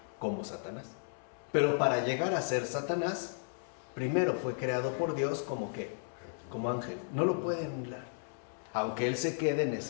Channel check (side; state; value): right; silent; 55 dB below the other